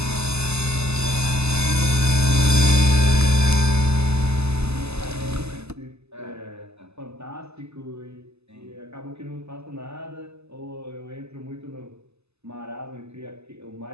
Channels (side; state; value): left; late; 0.80 ms